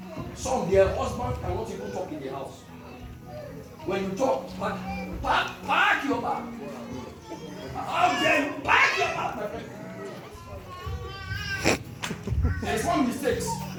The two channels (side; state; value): both; identical; correlation 1.00